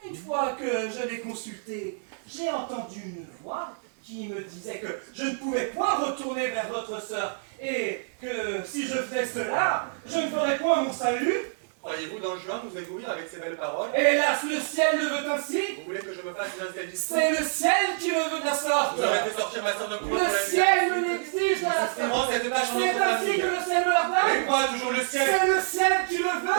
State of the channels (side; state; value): left; silent; digital silence